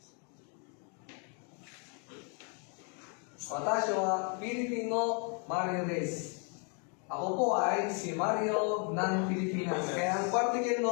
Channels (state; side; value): quieter; right; 37.9 dB